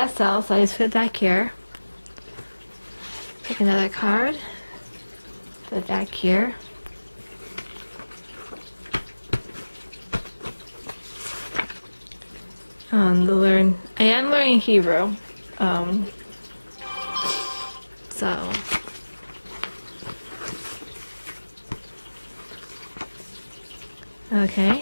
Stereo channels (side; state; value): both; inverted; correlation -1.00